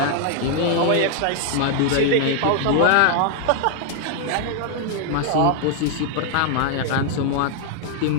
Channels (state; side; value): different; both; correlation 0.00